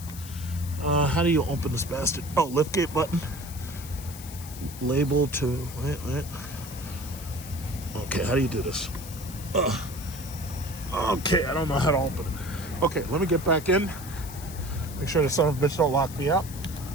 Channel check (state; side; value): noise; left; hiss, 14 dB below the sound